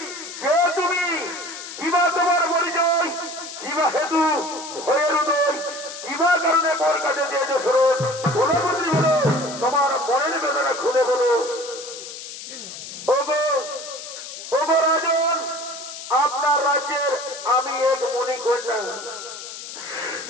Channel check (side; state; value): left; noise; hiss, 11 dB below the sound